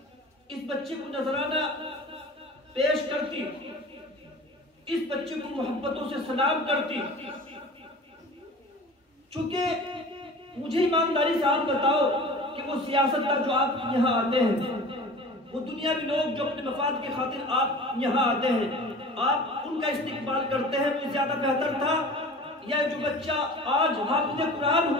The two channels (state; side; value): normal; both; correlation 0.40